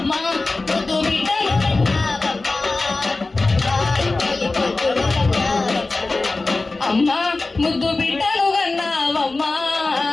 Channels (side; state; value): right; quieter; 3.4 dB